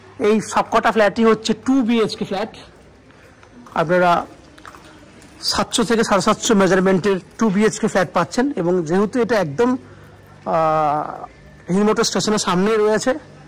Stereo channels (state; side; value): identical; both; correlation 1.00